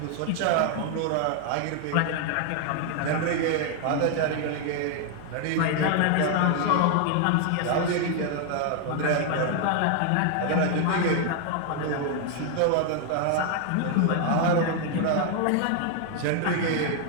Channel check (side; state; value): both; different; correlation 0.00